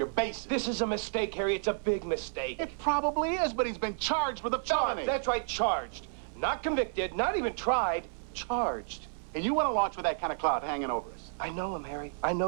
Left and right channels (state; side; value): silent; left; 57 dB below the other